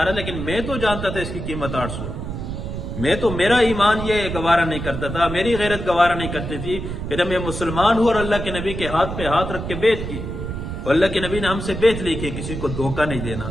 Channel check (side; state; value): right; noise; rumble, 6 dB below the sound